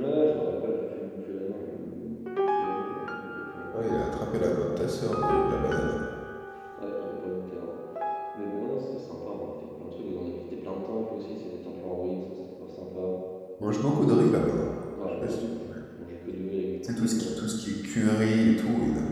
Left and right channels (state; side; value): identical; both; correlation 1.00